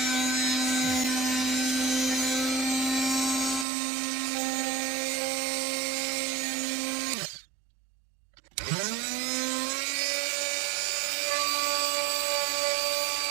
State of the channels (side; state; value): left; drops out; at 3.7 s